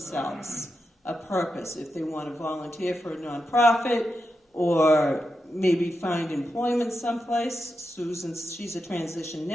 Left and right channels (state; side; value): normal; both; correlation 0.88